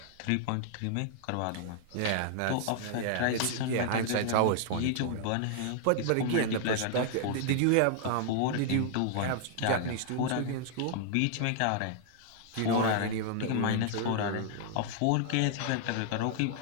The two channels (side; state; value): both; different; correlation 0.00